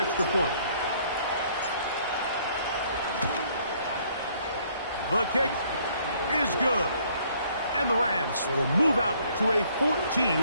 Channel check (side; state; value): both; inverted; correlation -0.63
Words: point. The kick is good. And the Rams will move out to a